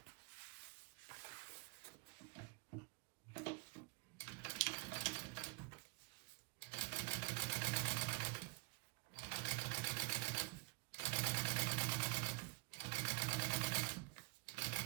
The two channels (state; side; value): quieter; left; 28.7 dB